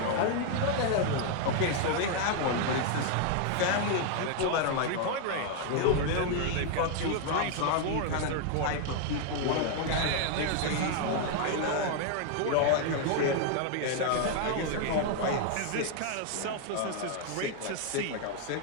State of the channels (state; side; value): different; both; correlation 0.00